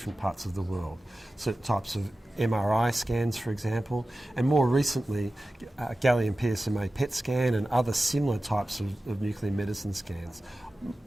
parts of the world. Certain types of MRI scans, for example, and more recently gallium PSMA PET scan and other similar types of nuclear medicine scans,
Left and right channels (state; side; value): normal; both; correlation 0.95